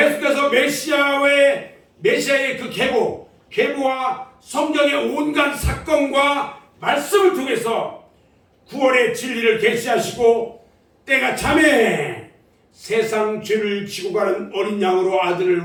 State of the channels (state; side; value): identical; both; correlation 1.00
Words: 메시아의 그 계보와 성경의 온갖 사건과 말씀을 통해서 구원의 진리를 계시하시고, 때가 참에 세상 죄를 지고 가는 어린 양으로 아들을